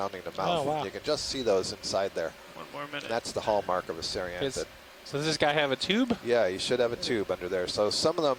the mouth. Oh, wow. You can just see those inside there. One more minute. And that's the hallmark of a ceranthid. So does this guy have a tube? Yeah, you should have a tube under there. So some of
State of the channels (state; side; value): identical; both; correlation 1.00